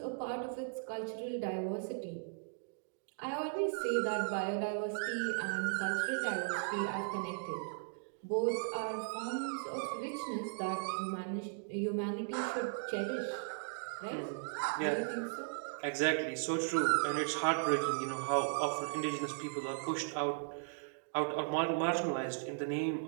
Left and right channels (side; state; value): left; silent; digital silence